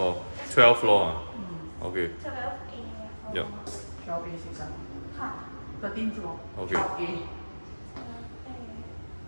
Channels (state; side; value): inverted; both; correlation -1.00